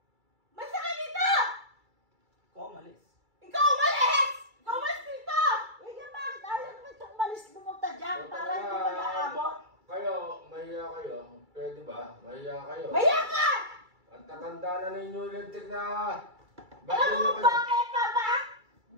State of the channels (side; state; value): left; late; 2.3 ms